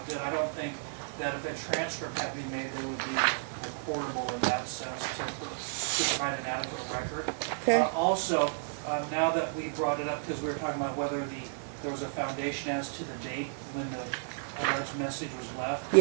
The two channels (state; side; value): silent; left; digital silence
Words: good. I don't think that if a transcript had to be made, that it would be recordable in that sense to provide an adequate record. Okay. Also, now that we brought it up, because we were talking about whether there was a foundation as to the date when the alleged message was left.